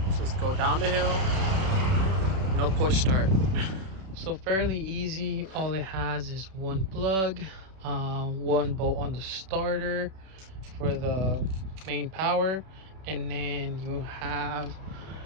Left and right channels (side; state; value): left; late; 31 ms